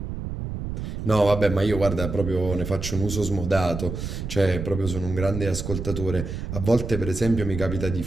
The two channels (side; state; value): right; noise; rumble, 6 dB below the sound